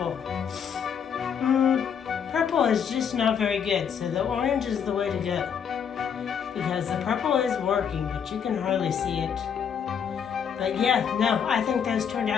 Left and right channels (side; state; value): right; quieter; 7.5 dB